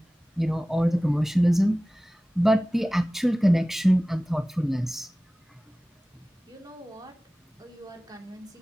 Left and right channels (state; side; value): normal; both; correlation 0.98